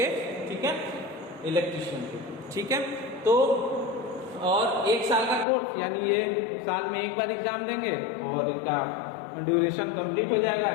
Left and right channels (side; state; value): right; drops out; at 5.5 s